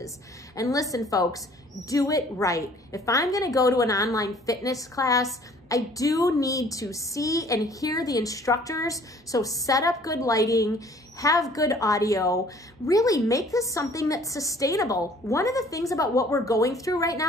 And listen, folks, do it right. If I'm gonna go to an online fitness class, I do need to see and hear the instructors. So set up good lighting, have good audio, really make this something that's sustainable. One of the things about what we're going through right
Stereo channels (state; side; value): normal; both; correlation 0.55